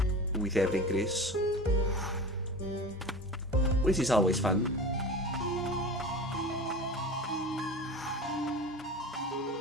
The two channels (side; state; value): both; normal; correlation 0.33